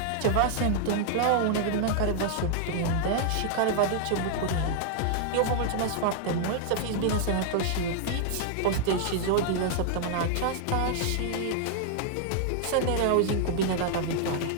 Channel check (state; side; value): different; both; correlation -0.01